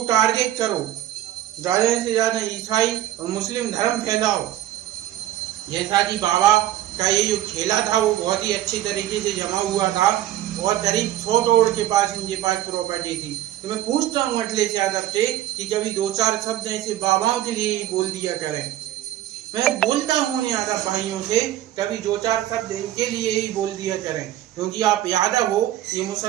टारगेट करो, ज़्यादा से ज़्यादा ईसाई और मुस्लिम धर्म फैलाओ। जैसा कि बाबा का ये जो खेला था वो बहुत ही अच्छी तरीके से जमा हुआ था और करीब 100 करोड़ के पास इनके पास प्रॉपर्टी थी। तो मैं पूछता हूँ अखिलेश यादव से कि कभी 2-4 शब्द ऐसे बाबाओं के लिए ही बोल दिया करें। मैं बोलता हूँ यादव भाइयों से, कभी 2-4 शब्द इनके लिए ही बोल दिया करें, क्योंकि आप यादव हो, ये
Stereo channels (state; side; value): quieter; left; 13.3 dB